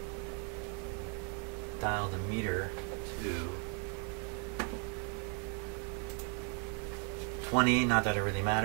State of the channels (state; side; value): quieter; left; 39.9 dB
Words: Dial the meter to 20, not that it really